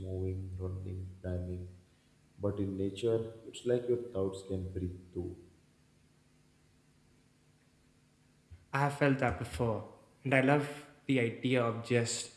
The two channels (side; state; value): both; identical; correlation 1.00